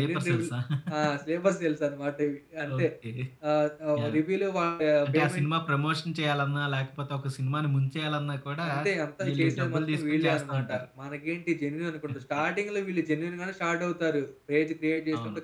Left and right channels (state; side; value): identical; both; correlation 1.00